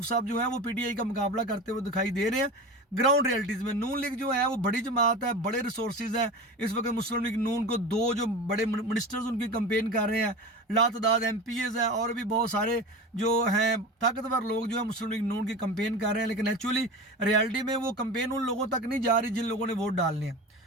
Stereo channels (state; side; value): normal; both; correlation 0.30